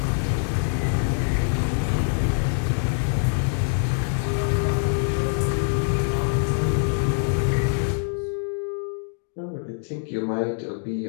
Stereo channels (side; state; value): right; silent; 62 dB below the other